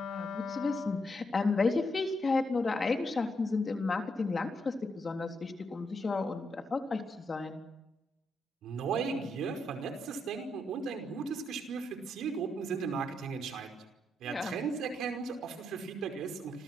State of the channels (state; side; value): normal; both; correlation 0.79